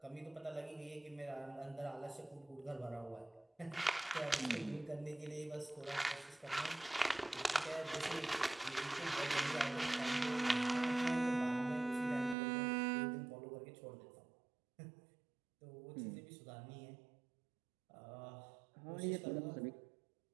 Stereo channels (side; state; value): left; drops out; at 12.4 s